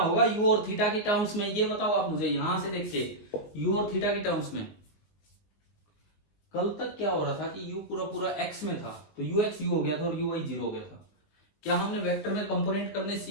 u और थीटा की टर्म्स में, ये बताओ आप मुझे यहां से देख के। u और थीटा की टर्म्स में कल तक क्या हो रहा था कि u पूरा पूरा x में था, तो ux u हो गया था और uy 0 हो गया था। क्या हमने वेक्टर में कंपोनेंट करने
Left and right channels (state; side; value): late; right; 19 ms